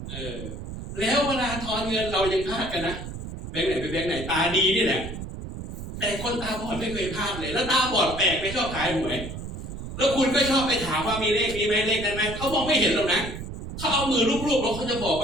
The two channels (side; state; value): right; noise; rumble, 8 dB below the sound